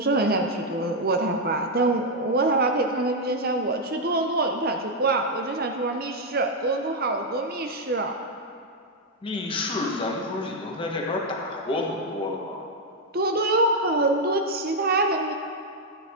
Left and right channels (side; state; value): both; normal; correlation 0.01